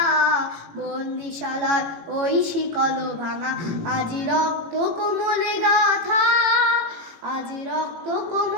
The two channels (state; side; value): late; left; 18 ms